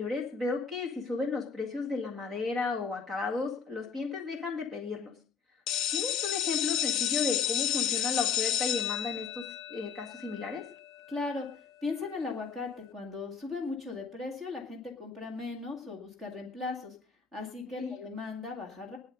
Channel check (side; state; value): right; quieter; 5.9 dB